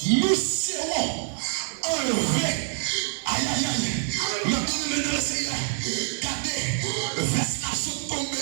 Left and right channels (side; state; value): left; silent; 61 dB below the other